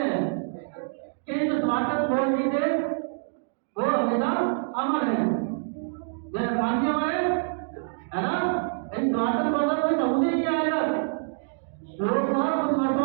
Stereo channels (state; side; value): silent; left; digital silence